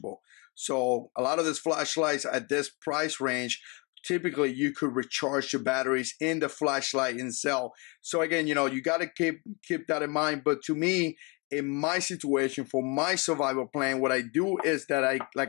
So a lot of these flashlights at this price range, typically you could recharge your batteries in the flashlight itself. So again, you got to keep that in mind. But to me, in my situation, for my survival plan, what I do is that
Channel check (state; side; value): quieter; right; 30.5 dB